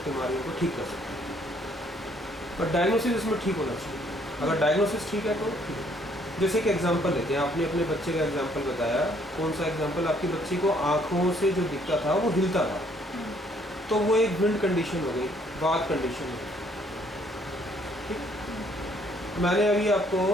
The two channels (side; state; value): both; normal; correlation 0.65